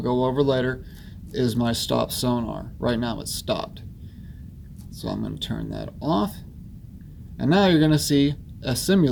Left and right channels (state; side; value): identical; both; correlation 1.00